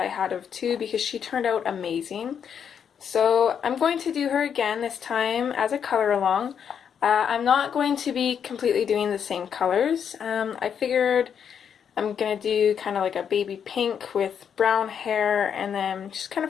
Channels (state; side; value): quieter; right; 7.8 dB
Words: had of too, because she turned out amazing. So I'm going to do her again, this time as a color along. I'm not going to be completely doing the same colors. I figured I'm going to do kind of like a baby pink with brown hair, and then just kind